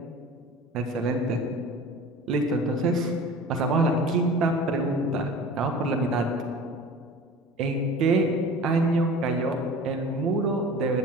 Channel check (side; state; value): both; normal; correlation 0.40